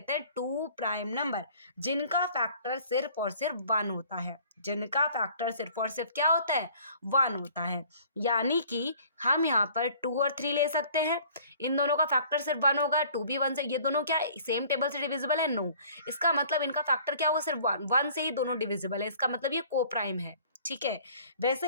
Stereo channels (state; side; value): inverted; both; correlation -0.53